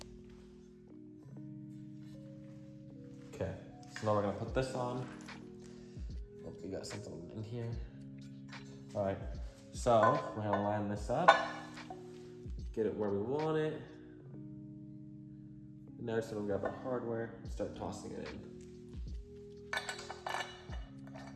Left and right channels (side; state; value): both; identical; correlation 1.00